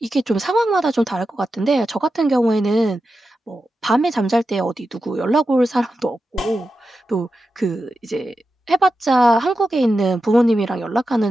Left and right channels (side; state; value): both; normal; correlation 0.91